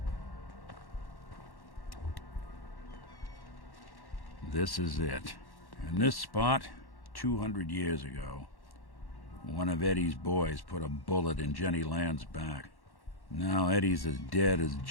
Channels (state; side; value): late; right; 1.1 ms